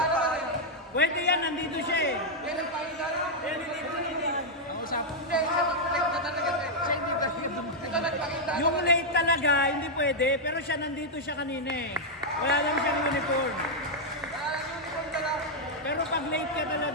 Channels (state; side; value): normal; both; correlation -0.03